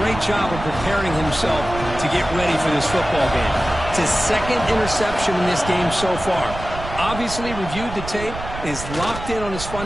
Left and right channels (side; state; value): right; noise; rumble, 10 dB below the sound